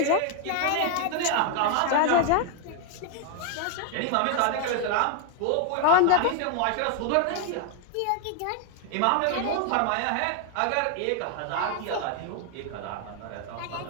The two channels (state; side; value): different; both; correlation 0.00